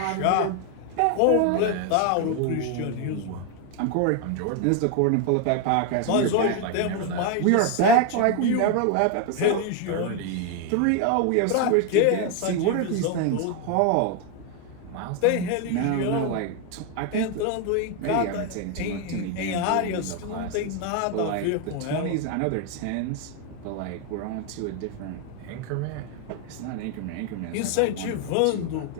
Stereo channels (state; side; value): different; both; correlation 0.01